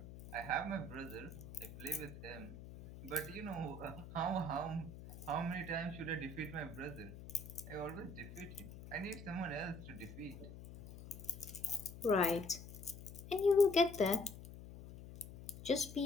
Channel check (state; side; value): noise; left; hum, 13 dB below the sound